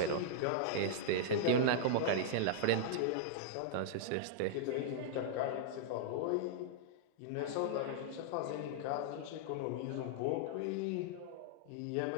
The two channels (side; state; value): both; different; correlation -0.01